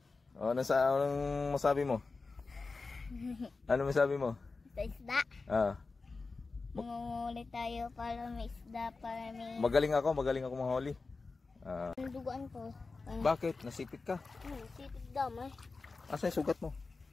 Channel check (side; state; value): right; quieter; 4.0 dB